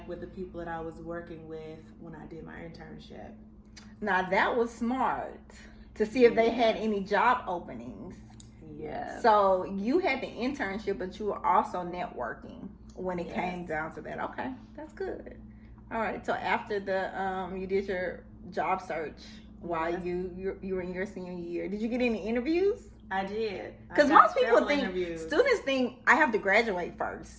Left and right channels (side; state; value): both; identical; correlation 1.00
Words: with the people that I was working with when I did my internship. Now that was smart, to see if they had any job openings. Yes. So you had the internship, but you were also networking when it came down to that. Okay, that's good. All right. So after the you did your job search while you were in your senior year, did you get any interviews? I did. Because most people think, students think I have to graduate